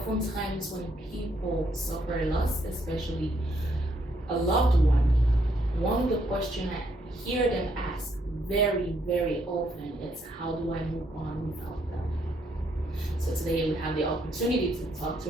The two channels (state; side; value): normal; both; correlation 0.73